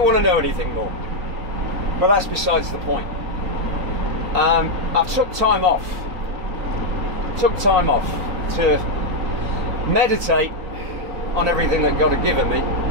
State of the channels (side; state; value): left; late; 3.9 ms